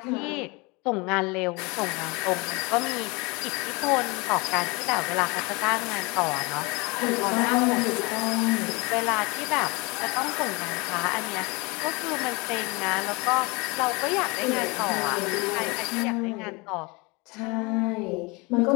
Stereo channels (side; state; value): right; quieter; 26.7 dB